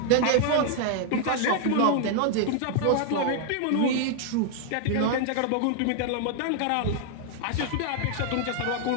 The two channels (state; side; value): different; both; correlation 0.00